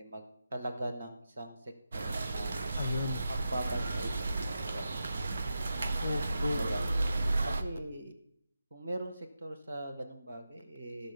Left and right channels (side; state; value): both; inverted; correlation -0.89